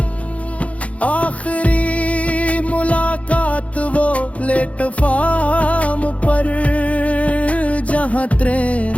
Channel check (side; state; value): right; late; 0.065 ms